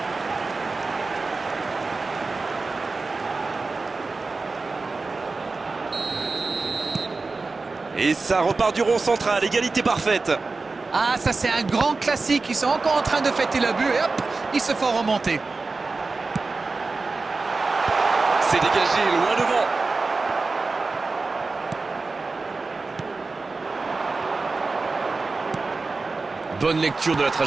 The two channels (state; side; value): quieter; left; 3.8 dB